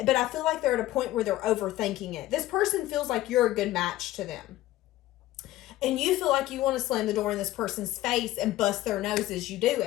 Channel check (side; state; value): right; quieter; 15.6 dB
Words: I feel like they're at a point where they're overthinking it. This person feels like you're a good match to them. And you feel like you want to slam the door in this person's face and bust their nose as you do